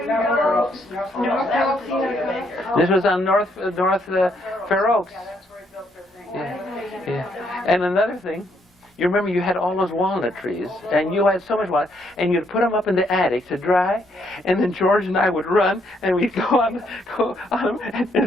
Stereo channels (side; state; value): both; normal; correlation 0.72